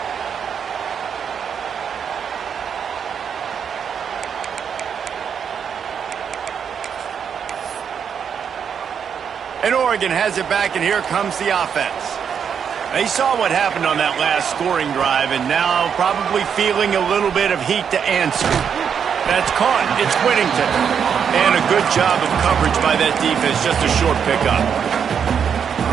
And Oregon has it back, and here comes the offense. They saw what happened on that last scoring drive, and now probably feeling a little bit of heat to answer. That's caught. It's Whittington. And a good job of coverage by that defense. Just a short pickup.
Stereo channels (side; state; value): left; quieter; 7.4 dB